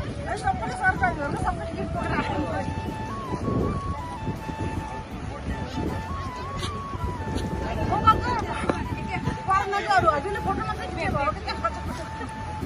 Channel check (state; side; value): identical; both; correlation 1.00